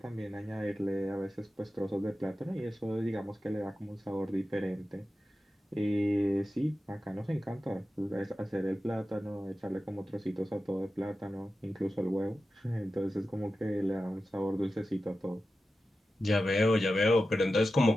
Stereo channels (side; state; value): both; normal; correlation 0.93